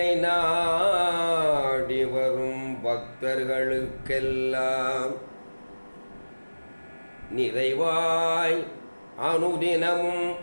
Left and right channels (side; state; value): both; inverted; correlation -1.00